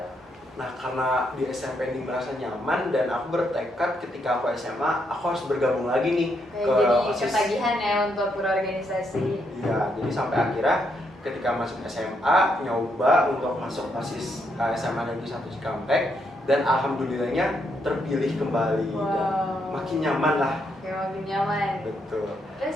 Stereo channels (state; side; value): normal; both; correlation 0.77